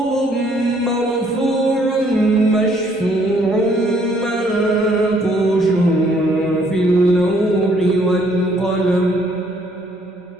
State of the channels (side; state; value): both; normal; correlation 0.65